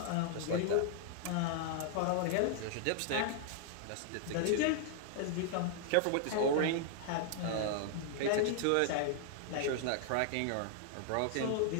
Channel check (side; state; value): both; different; correlation -0.01